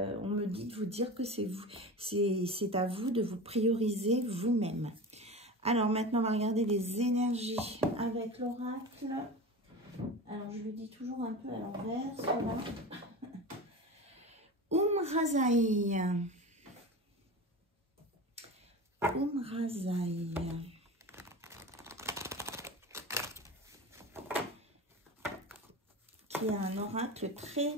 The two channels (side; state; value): both; normal; correlation 0.30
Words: On me dit de vous dire que c'est à vous de vous prioriser vous-même. Alors maintenant, on va regarder les énergies avec l'oracle. Alors, je le dis toujours un peu à l'envers, voilà. Razai. Razai. Qui a un oracle très